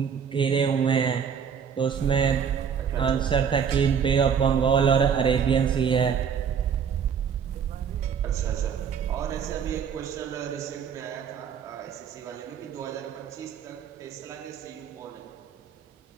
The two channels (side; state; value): left; quieter; 7.2 dB